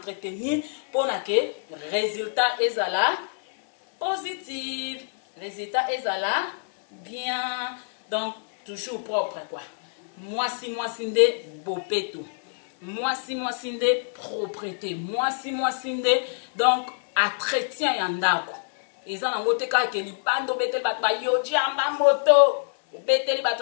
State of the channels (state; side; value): silent; right; 61 dB below the other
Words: mpona ke résultat ezala positif résultat ezala bien donc toujours propre quoi mwasi nde bopeto mwasi nde propreté mwasi nde donc entretien ya ndako eza nango te kaka ke libanda obeteli bato bayoji yamba moto obeteli